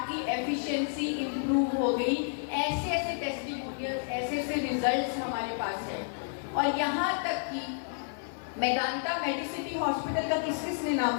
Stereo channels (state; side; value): silent; right; 57 dB below the other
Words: की एफिशिएंसी इंप्रूव हो गई। ऐसे ऐसे टेस्टिमोनियल, ऐसे ऐसे रिजल्ट्स हमारे पास हैं। और यहाँ तक कि मेदांता मेडिसिटी हॉस्पिटल का किसने